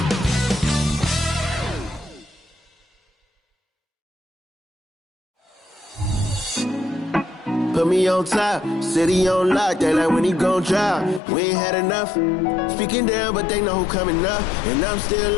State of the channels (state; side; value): drops out; right; at 11.2 s